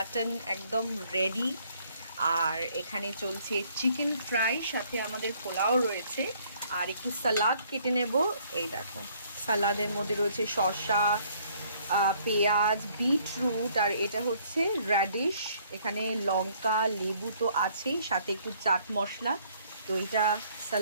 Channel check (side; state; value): both; inverted; correlation -0.63